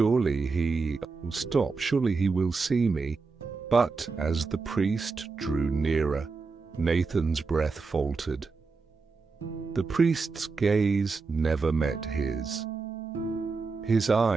he will see me. But as the priest drew nearer, Nathan's breath faltered. The priest's gaze never met his. His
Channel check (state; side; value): quieter; left; 4.4 dB